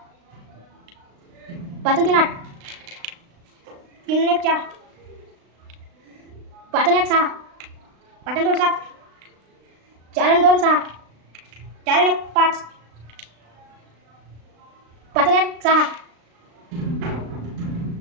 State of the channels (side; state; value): left; late; 36 ms